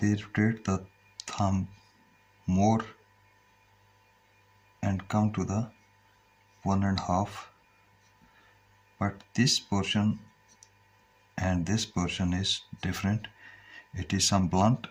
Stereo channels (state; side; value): identical; both; correlation 1.00